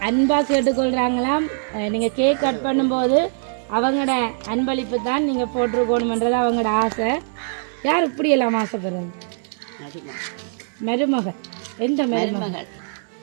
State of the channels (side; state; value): left; silent; digital silence